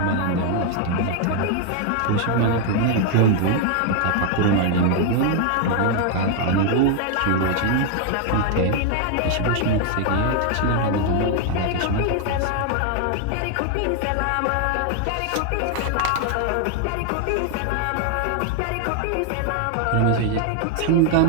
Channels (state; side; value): different; both; correlation 0.00